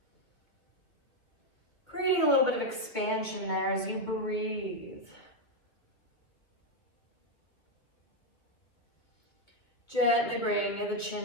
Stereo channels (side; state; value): right; late; 2.3 ms